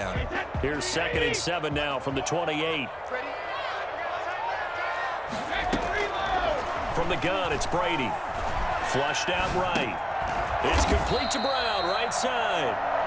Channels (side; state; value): both; identical; correlation 1.00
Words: Here's 2nd and 7 now from the 28. From the gun, it's Brady. Flushed out right. It's complete to Brown, right side.